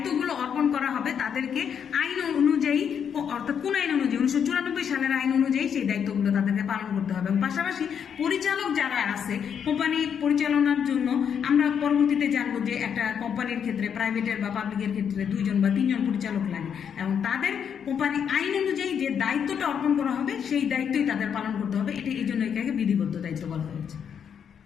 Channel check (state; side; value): quieter; right; 7.8 dB